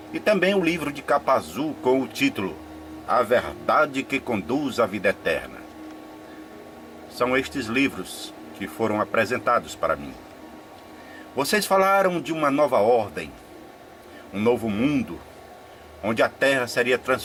e também um livro de capa azul com o título A Verdade que Conduz à Vida Eterna. São estes livros que foram apresentados para mim. Vocês falaram de uma nova ordem, um novo mundo, onde a terra seria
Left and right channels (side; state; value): both; identical; correlation 1.00